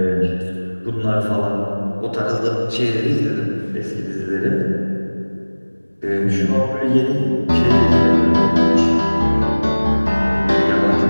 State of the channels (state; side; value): inverted; both; correlation -1.00